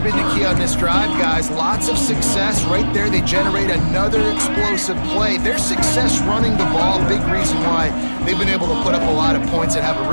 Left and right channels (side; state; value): both; inverted; correlation -1.00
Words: the key on this drive, guys. Lots of success right there. They generate another explosive play. Their success running the ball, big reason why they've been able to put up a lot of points and have a